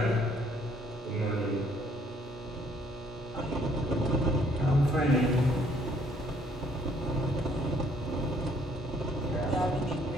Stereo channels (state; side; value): normal; both; correlation 0.64